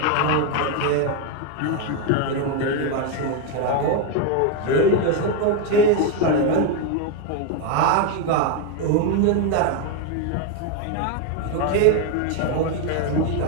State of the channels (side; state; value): both; different; correlation 0.01